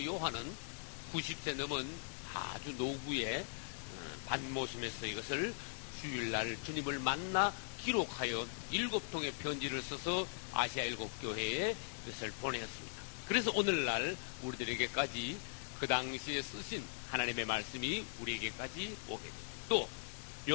요한은 90세 넘은 아주 노부의 반모섬에서 이것을 주일날 주님을 만나 기록하여 7통의 편지를 써서 아시아 7교회에 이것을 보내었습니다. 그래서 오늘날 우리들에게까지 그 당시에 쓰신 하나님의 말씀이 우리에게까지 오게 됩니다. 또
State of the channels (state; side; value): silent; right; digital silence